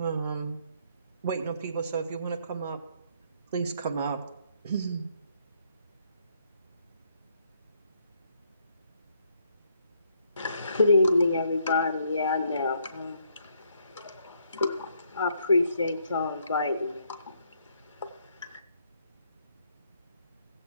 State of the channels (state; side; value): inverted; both; correlation -0.71